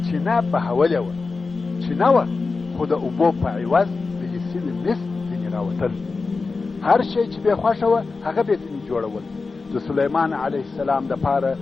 چینه بهولې وه. چینه وه خو د اوبو په عوض ویلې سوي مس ځینې راوتل. هر شی چې به خوښه وه هغه به ځینې جوړول. د سلیمان علیه السلام دپاره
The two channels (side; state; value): right; quieter; 4.1 dB